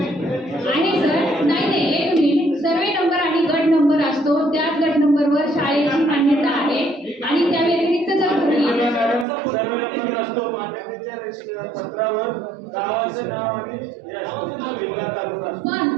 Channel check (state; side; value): drops out; left; at 9.2 s